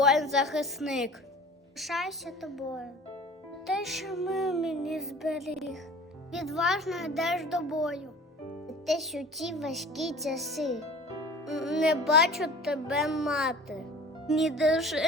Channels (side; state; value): both; normal; correlation 0.43